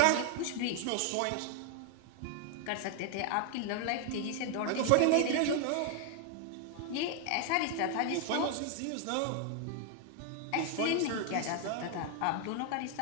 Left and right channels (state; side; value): different; both; correlation 0.00